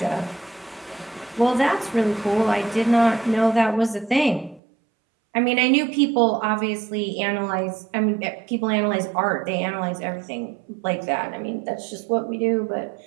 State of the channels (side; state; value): left; drops out; at 4.6 s